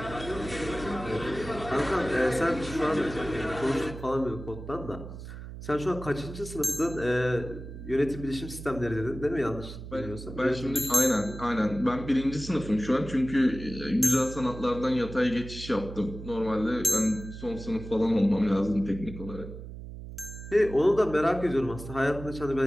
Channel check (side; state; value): right; noise; hum, 11 dB below the sound